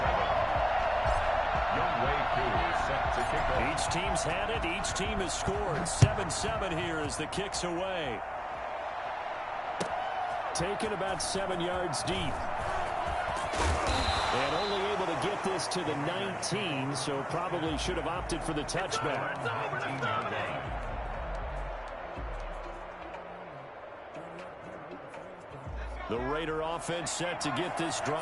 Youngway 2 set to kick off. Each team's had it. Each team has scored. 7-7 here as the kick's away. Taken about 7 yards deep. And only able to get this to the 19, so probably should have opted for the touchback. The Raider offense set to get this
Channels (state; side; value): identical; both; correlation 1.00